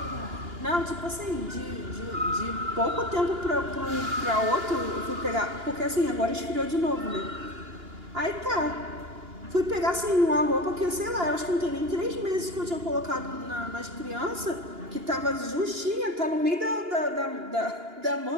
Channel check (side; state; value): left; late; 2.9 ms